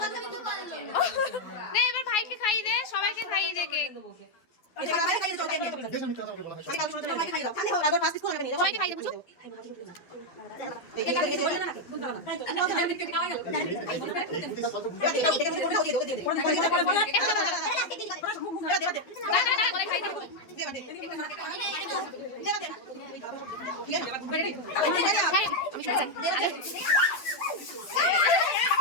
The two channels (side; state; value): right; late; 12 ms